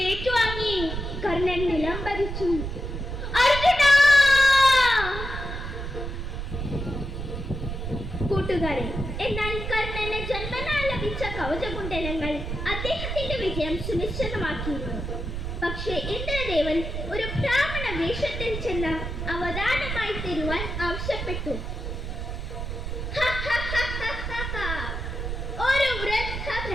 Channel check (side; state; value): right; noise; rumble, 5 dB below the sound